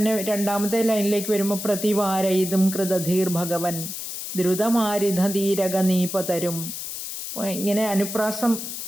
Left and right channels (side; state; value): left; noise; hiss, 7 dB below the sound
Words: രണ്ടാമത്തെ ലൈനിലേക്ക് വരുമ്പോൾ പ്രതിവാരയിതും കൃതധീർ ഭഗവൻ ദ്രുതമാരിധീരകനീപതരും. ഇങ്ങനെ അനുപ്രാസം